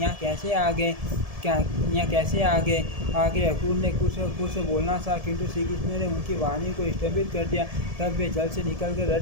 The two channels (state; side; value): late; left; 1.7 ms